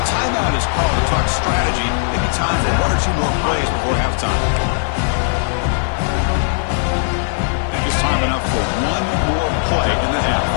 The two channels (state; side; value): silent; right; digital silence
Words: timeout is called to talk strategy. Maybe time for one or two more plays before halftime. And just time enough for one more play in the half.